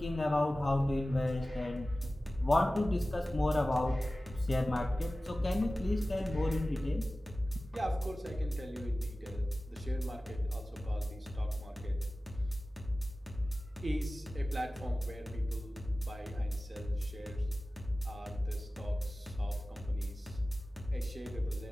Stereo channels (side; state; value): both; normal; correlation 0.96